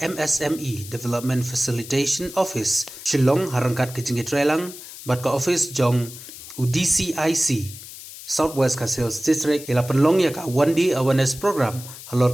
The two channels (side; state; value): left; noise; hiss, 14 dB below the sound